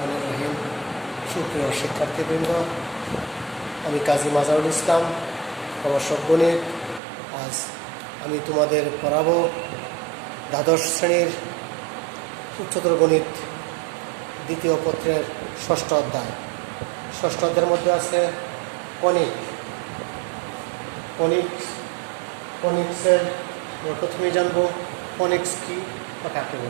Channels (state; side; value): drops out; left; at 7.0 s